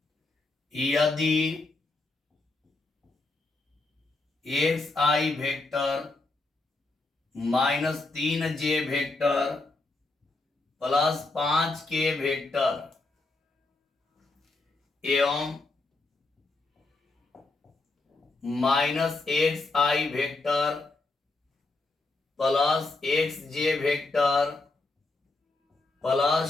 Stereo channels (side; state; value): right; quieter; 3.3 dB